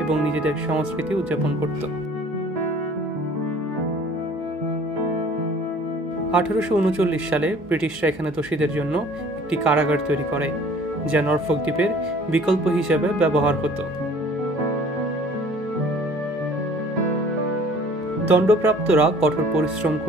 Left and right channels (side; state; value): both; normal; correlation 0.51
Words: এবং নিজেদের সংস্কৃতি উদযাপন করত। 1839 সালে ব্রিটিশরা এখানে দোষীদের জন্য একটি কারাগার তৈরি করে, যা নরফক দ্বীপের বিকল্প হিসেবে ব্যবহার হতো। দণ্ডপ্রাপ্তরা কঠোর পরিশ্রম